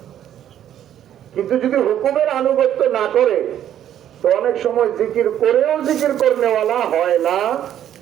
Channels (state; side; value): quieter; left; 10.8 dB